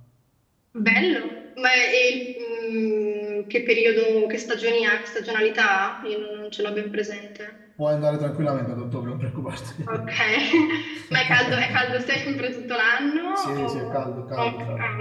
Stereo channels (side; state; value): both; identical; correlation 1.00